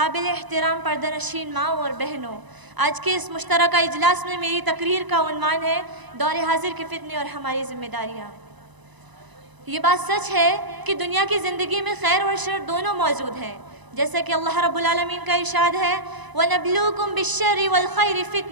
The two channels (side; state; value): left; late; 1.0 ms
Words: احترام پردہ نشین ماں اور بہنوں، آج کے اس مشترکہ اجلاس میں میری تقریر کا عنوان ہے دور حاضر کے فتنے اور ہماری ذمہ داریاں. یہ بات سچ ہے کہ دنیا کی زندگی میں خیر اور شر دونوں موجود ہیں، جیسا کہ اللہ رب العالمین کا ارشاد ہے وَنَبْلُوكُمْ بِالشَّرِّ وَالْخَيْرِ